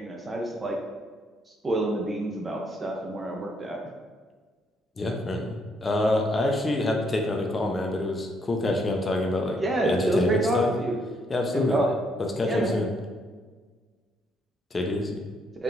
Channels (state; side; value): normal; both; correlation 0.72